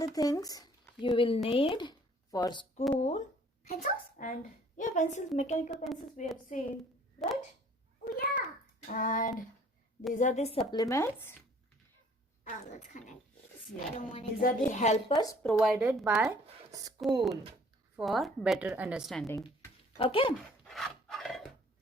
things you will need for school. Pencils? And yeah, pencils, mechanical pencils we have seen, right? Oh, yeah. And these are the supplements. Oh, that's kind of Yeah. I don't want These are the helpers provided by school for better understanding. Okay.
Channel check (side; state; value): both; normal; correlation 0.56